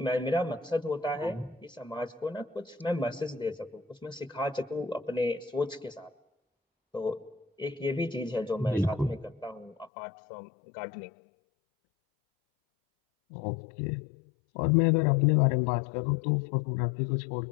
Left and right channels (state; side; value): drops out; right; at 9.9 s